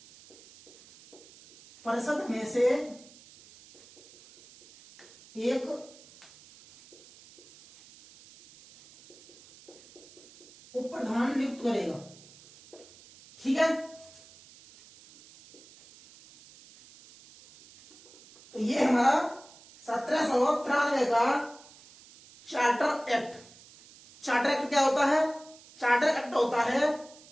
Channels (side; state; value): right; noise; hiss, 23 dB below the sound